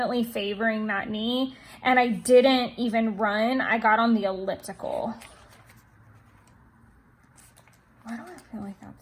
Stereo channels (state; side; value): identical; both; correlation 1.00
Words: favoring that knee, and I didn't even run. I got on the elliptical. Why do I feel like